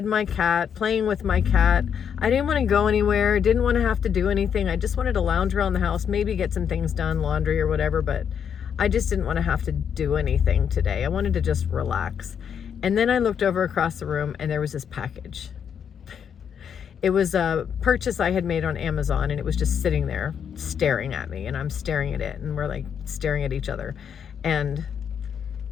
my cat, playing with my cat. I didn't want to go anywhere, didn't want to have to do anything. I just wanted to lounge around the house, maybe get some things done, laundry or whatever, but I just didn't want to have to do anything today. I wanted to just relax. And then I looked over across the room and there was this package. It was a purchase I had made on Amazon, and it was just sitting there staring at me, and I'm staring at it, and we're like staring at each other. And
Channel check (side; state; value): right; quieter; 7.8 dB